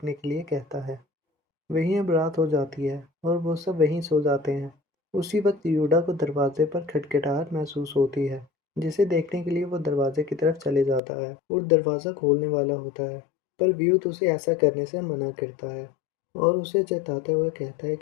के लिए कहता है। वहीं अब रात हो जाती है और वो सब वहीं सो जाते हैं उसी वक्त यूडा को दरवाजे पर खटखटाहट महसूस होती है, जिसे देखने के लिए वो दरवाजे की तरफ चले जाता है और दरवाज़ा खोलने वाला होता है, पर व्यूत उसे ऐसा करने से मना करता है और उसे चेताते हुए कहता है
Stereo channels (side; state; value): right; drops out; at 11.0 s